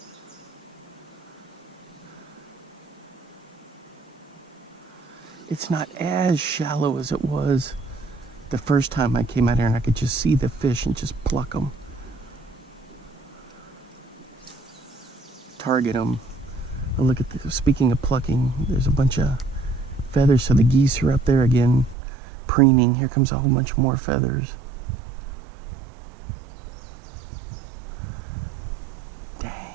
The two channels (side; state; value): left; drops out; at 22.0 s